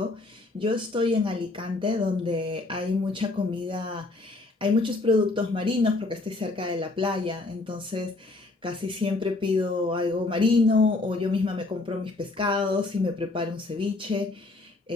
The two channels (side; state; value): right; quieter; 3.1 dB